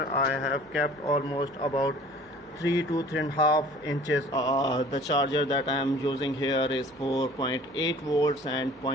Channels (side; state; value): left; noise; hum, 30 dB below the sound